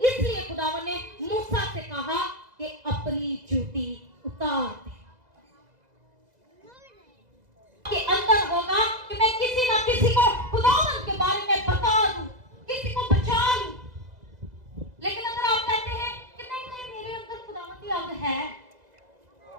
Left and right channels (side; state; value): left; late; 2.0 ms